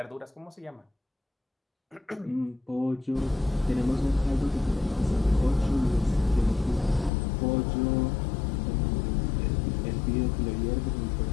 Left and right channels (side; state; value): right; drops out; at 7.1 s